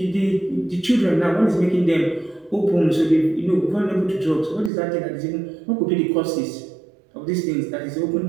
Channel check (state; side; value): drops out; left; at 4.7 s